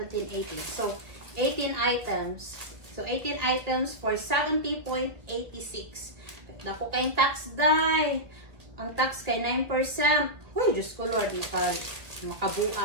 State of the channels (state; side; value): late; left; 1.6 ms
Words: 18. So, 18 items. So, 18 items for 70.86. Dako kayong tax die. Ang tax kay 9%. Uy, Diyos ko Lord,